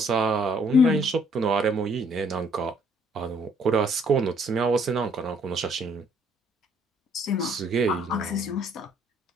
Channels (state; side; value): normal; both; correlation 0.64